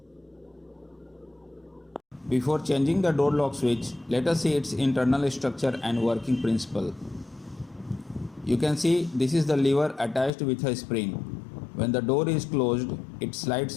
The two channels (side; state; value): right; drops out; at 10.3 s